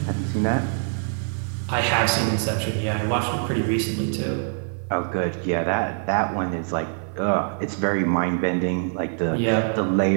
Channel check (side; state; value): left; silent; 63 dB below the other